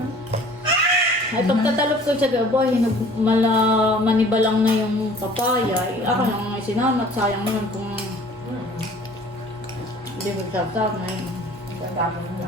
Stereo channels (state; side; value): normal; both; correlation 0.50